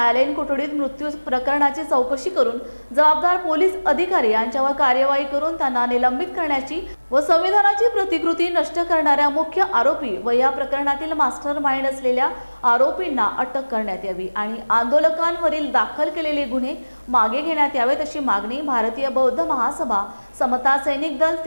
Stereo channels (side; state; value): both; inverted; correlation -1.00